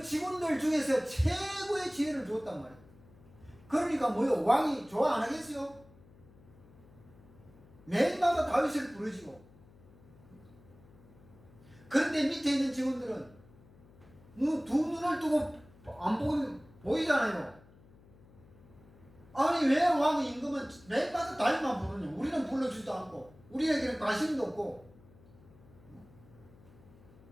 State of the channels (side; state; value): left; noise; hum, 24 dB below the sound